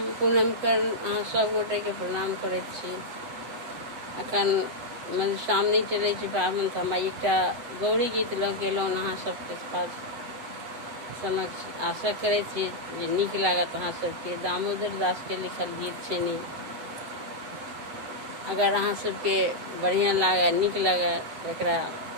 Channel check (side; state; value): left; late; 8.0 ms